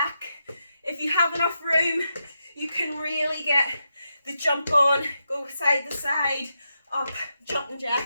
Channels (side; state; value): both; inverted; correlation -0.85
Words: If you have enough room, you can really get the jump on, go side to side, up, jumping